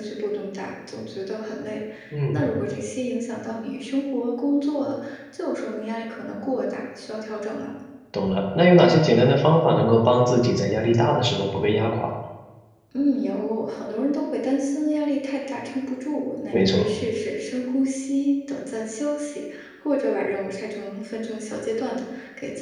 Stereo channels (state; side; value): identical; both; correlation 1.00